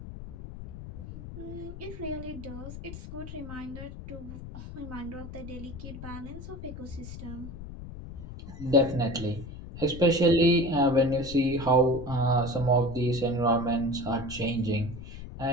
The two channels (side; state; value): left; noise; rumble, 11 dB below the sound